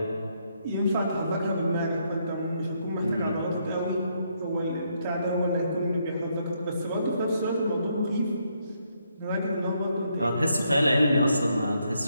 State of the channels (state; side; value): inverted; both; correlation -0.75